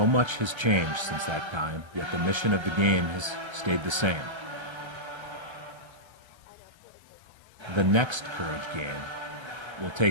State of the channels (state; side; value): late; left; 1.3 ms